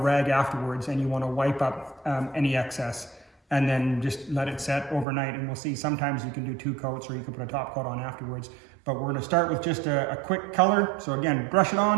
afterwards, and you want to wipe up any excess, and then just let it set overnight. And we'll see, sometimes you can do 2 coats, or you can put a top coat on afterwards. But we're going to start with just a quick color. So again, brush it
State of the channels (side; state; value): left; drops out; at 5.1 s